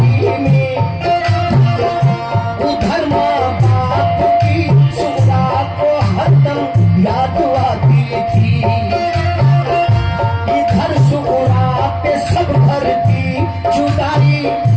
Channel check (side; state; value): both; identical; correlation 1.00